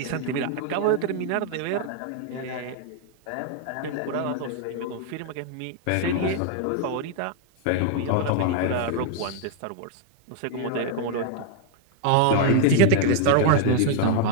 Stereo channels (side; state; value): both; different; correlation 0.00